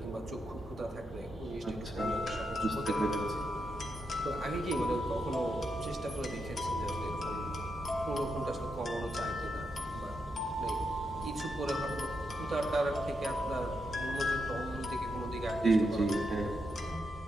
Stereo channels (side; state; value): both; normal; correlation 0.83